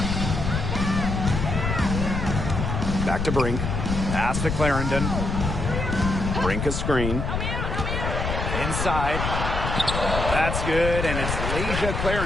Back to Brink. Pass to Clarendon. Brink a screen. Inside. That's good, and it's Leisha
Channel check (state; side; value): noise; left; rumble, 2 dB below the sound